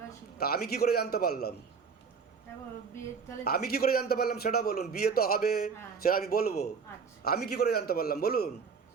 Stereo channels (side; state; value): left; quieter; 5.7 dB